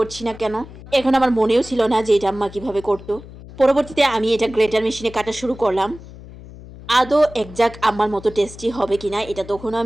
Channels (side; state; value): left; noise; hum, 17 dB below the sound